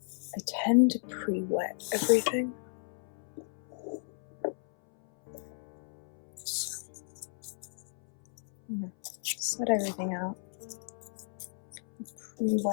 I tend to pre-wet everything. So I'm gonna set everything out.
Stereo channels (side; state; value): right; silent; 55 dB below the other